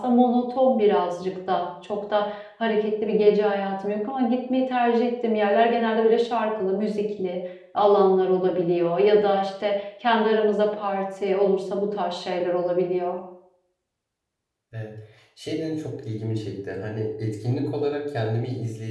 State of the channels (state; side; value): identical; both; correlation 1.00